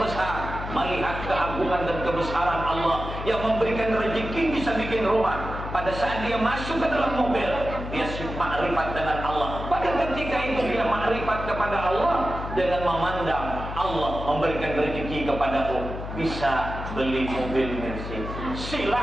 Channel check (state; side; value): noise; left; hum, 8 dB below the sound